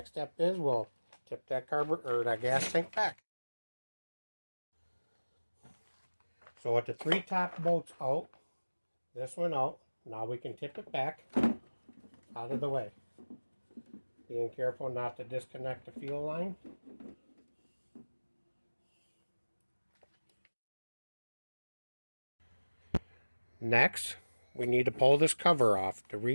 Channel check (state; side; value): inverted; both; correlation -1.00